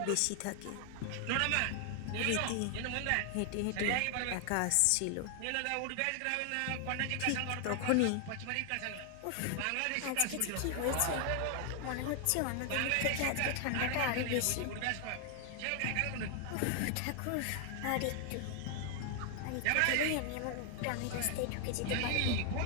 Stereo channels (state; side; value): different; both; correlation 0.00